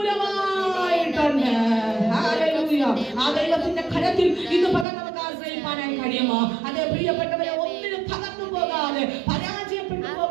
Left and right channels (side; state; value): left; drops out; at 4.9 s